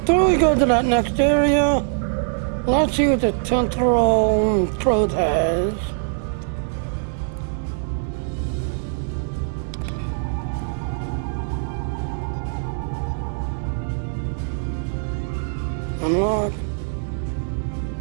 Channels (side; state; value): left; silent; digital silence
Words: we go to that next area, let's see what the temporal probe has. Unlock.